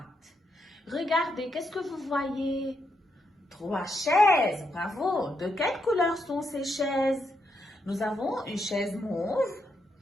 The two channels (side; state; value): both; normal; correlation 0.80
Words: Regardez, qu'est-ce que vous voyez? 3 chaises, bravo. De quelle couleur sont ces chaises? Nous avons une chaise mauve,